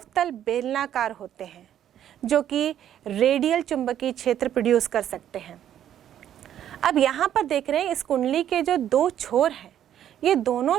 बेलनाकार होते हैं, जो कि रेडियल चुंबकीय क्षेत्र प्रोड्यूस कर सकते हैं। अब यहाँ पर देख रहे हैं इस कुंडली के जो दो छोर हैं, ये दोनों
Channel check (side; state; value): left; quieter; 10.6 dB